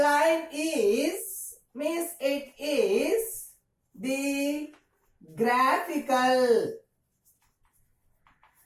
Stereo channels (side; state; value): both; identical; correlation 1.00